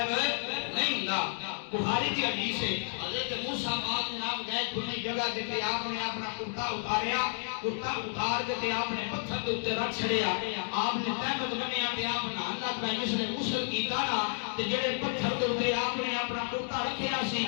نہیں ہوندا بخاری کی حدیث ہے حضرت موسیٰ پاک جناب گئے کھلی جگہ تے آپ نے اپنا کرتا اتاریا کرتا اتار کے آپ نے پتھر کے اوپر رکھ چھڑیا آپ نے تہمت بنیا تے آپ نہان لگ پئے جس نے غسل کیتا نا تے جڑے پتھر کے اوپر آپ نے اپنا کرتا رکھیا سی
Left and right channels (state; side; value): silent; right; digital silence